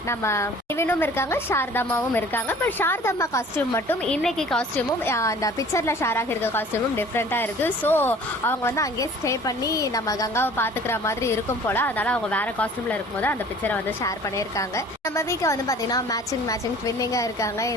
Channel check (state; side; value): normal; both; correlation 0.48